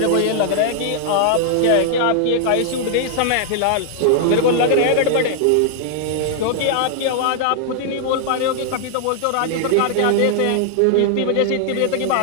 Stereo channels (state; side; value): different; both; correlation -0.01